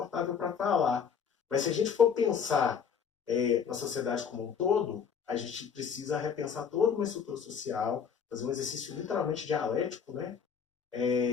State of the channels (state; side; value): quieter; right; 7.0 dB